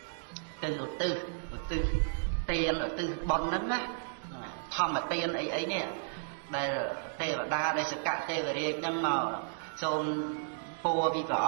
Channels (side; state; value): left; silent; digital silence